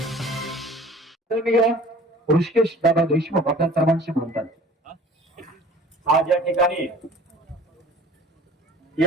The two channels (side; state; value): both; normal; correlation 0.46